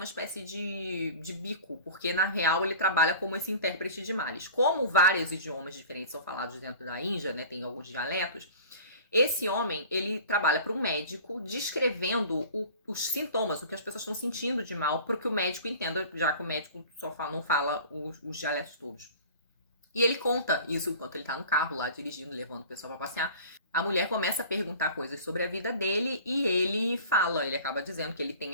espécie de bico, porque na real ele trabalha como esse intérprete de males. Como vários idiomas diferentes são falados dentro da Índia, né, tem alguns dialetos, esse homem, ele trabalha para um médico descrevendo os sintomas, o que as pessoas estão sentindo de mal, para que o médico entenda, já que o médico não fala os dialetos todos. E ele conta isso enquanto ele tá no carro lá, dirigindo, levando o pessoal pra passear. A mulher começa a perguntar coisas sobre a vida dele e ele acaba dizendo que ele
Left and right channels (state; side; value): inverted; both; correlation -0.42